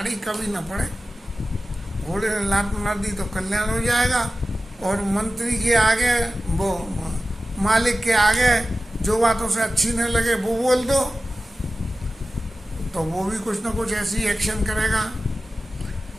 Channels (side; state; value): both; normal; correlation 0.95